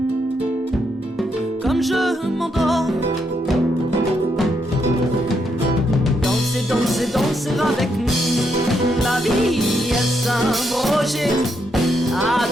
comme je m'endors. Danser, danser avec la vie, est-ce un projet à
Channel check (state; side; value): normal; both; correlation 0.78